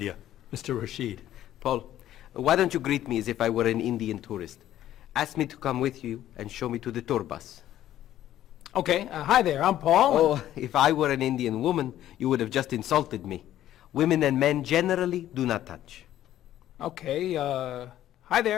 Mr. Rashid. Paul, why don't you greet me as if I were an Indian tourist? Ask me to come with you and show me to the tour bus. Okay, hi there, I'm Paul. Oh, if I were an Indian woman, you would have just insulted me. Women and men generally do not touch. Okay, hi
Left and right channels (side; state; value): right; quieter; 12.6 dB